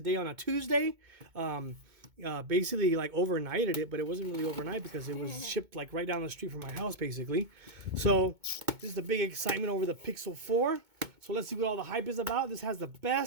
on a Tuesday. Basically like overnighted it, but it wasn't really overnight because it was shipped like right down the street from my house basically. So this is the big excitement over the Pixel 4. So let's see what all the hype is about. This has the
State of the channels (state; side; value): late; left; 2.2 ms